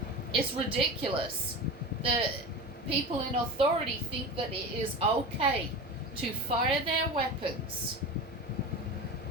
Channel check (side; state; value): both; normal; correlation 0.29